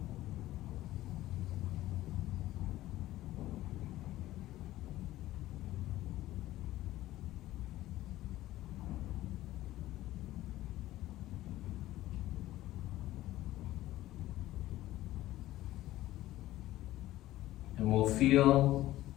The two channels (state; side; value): quieter; right; 15.5 dB